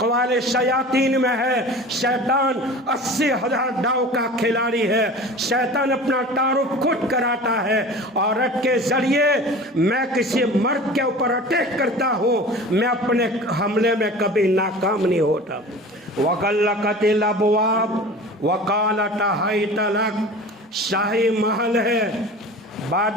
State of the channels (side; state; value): both; normal; correlation 0.38